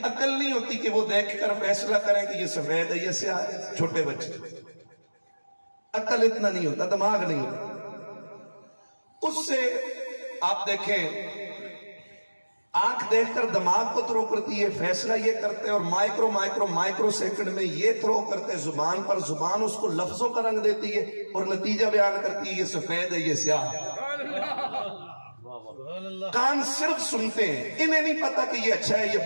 عقل نہیں ہوتی کہ وہ دیکھ کر فیصلہ کریں کہ یہ سفید ہے یہ سیاہ ہے۔ چھوٹے بچے، عقل اتنا نہیں ہوتا، دماغ نہیں ہوتا۔ اس سے آپ دیکھیں، آنکھ دیکھ کر دماغ کو تھرو کرتی ہے، فیصلہ یہ کرتے ہیں، اور مائکرو سیکنڈ میں یہ تھرو کرتے ہیں زبان پر، زبان اس کو لفظوں کا رنگ دیتی ہے اور نتیجہ بیان کرتی ہے یہ سفید ہے یہ سیاہ ہے۔ کان صرف سنتے ہیں، انہیں نہیں پتا کہ یہ اچھا ہے یہ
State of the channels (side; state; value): both; inverted; correlation -1.00